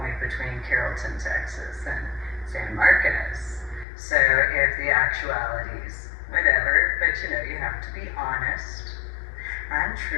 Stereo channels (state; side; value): drops out; right; at 3.9 s